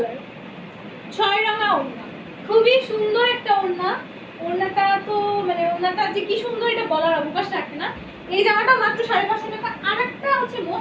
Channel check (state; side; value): identical; both; correlation 1.00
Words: 6 রঙা ওড়না। খুবই সুন্দর একটা ওড়না। ওড়নাটা তো মানে ওড়নাটা যে কি সুন্দর এটা বলার অবকাশ রাখে না। এই জামাটা মাত্র 550 টাকা। আর একটা হচ্ছে